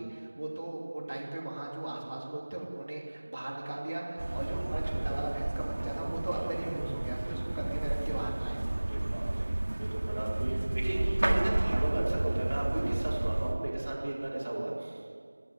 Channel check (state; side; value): inverted; both; correlation -1.00